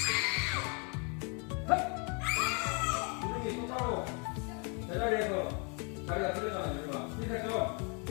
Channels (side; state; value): right; quieter; 35.5 dB